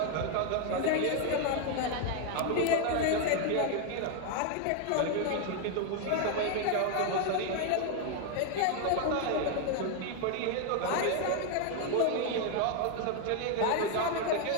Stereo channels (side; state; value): both; different; correlation 0.01